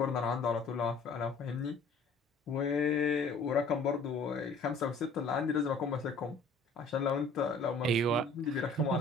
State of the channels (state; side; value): quieter; right; 3.6 dB